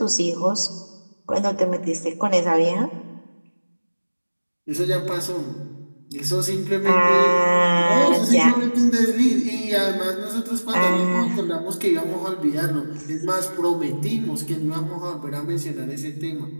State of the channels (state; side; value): inverted; both; correlation -1.00